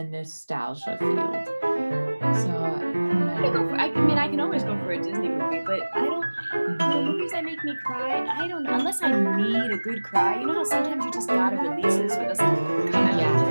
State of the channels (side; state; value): both; inverted; correlation -1.00